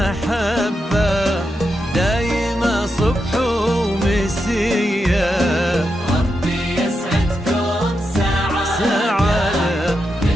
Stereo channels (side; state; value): both; normal; correlation 0.86